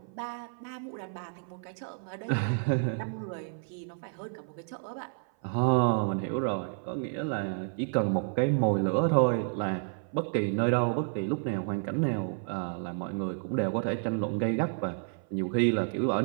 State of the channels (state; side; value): silent; left; 56 dB below the other